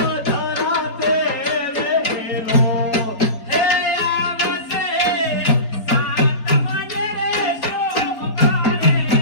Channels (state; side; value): late; right; 4.3 ms